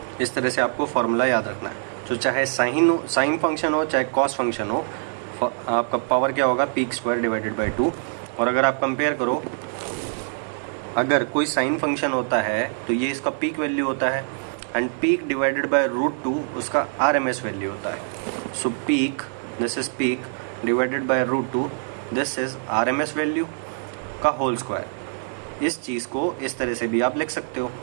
इस तरह से आपको formula याद रखना है, तो चाहे साइन फंक्शन हो चाहे कॉस फंक्शन हो, आपका पावर क्या होगा, पीक स्क्वायर डिवाइडेड बाय 2। और अगर आप कंपेयर करो, अगर कोई साइन फंक्शन होता है तो ये इसका पीक वैल्यू होता है, एंड पीक डिवाइडेड बाय √2 उसका RMS वैल्यू होता है। So peak, this is peak divided by √2, this is RMS value का होल स्क्वायर। इस चीज़ को इस तरह से भी आप लिख सकते हो,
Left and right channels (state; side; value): silent; left; digital silence